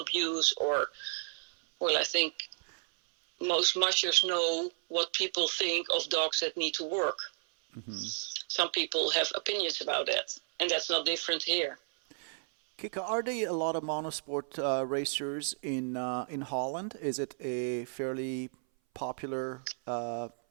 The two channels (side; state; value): left; silent; 56 dB below the other